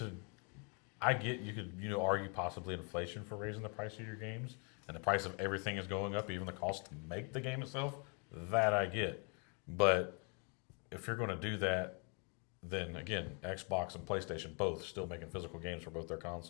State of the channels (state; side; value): quieter; right; 36.2 dB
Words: I get you could argue possibly inflation for raising the price of your games, and the price of everything is going up, even the cost to make the game itself. That I get, but if you're going to do that, then again, Xbox and PlayStation both still making physical games for both their